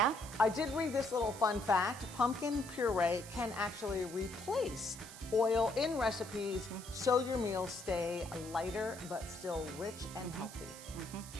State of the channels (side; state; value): right; noise; hiss, 14 dB below the sound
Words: I did read this little fun fact. Pumpkin puree can actually replace oil in recipes so your meals stay lighter but still rich and healthy.